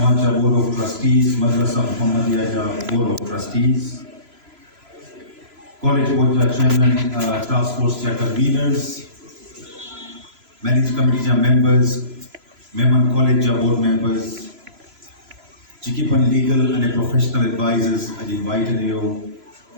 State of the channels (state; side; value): late; left; 3.0 ms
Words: board of trustees, Madressa Mohammediyya board of trustees, college board chairman, task force conveners, management committee members, Memon college board members, Chikipan legal and professional advisors, I invited you,